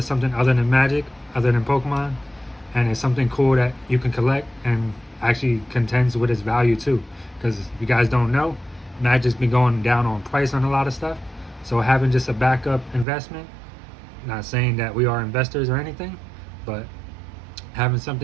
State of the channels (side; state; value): left; drops out; at 13.1 s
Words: something other than Magic, other than Pokemon, and it's something cool that you can collect and actually contends with its value too. Because if you guys don't know, Magic's been going down on price on a lot of stuff, so having just a backup investment, not saying that we are investors or anything, but having